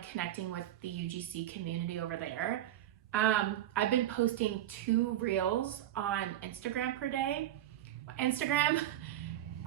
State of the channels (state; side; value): quieter; left; 12.7 dB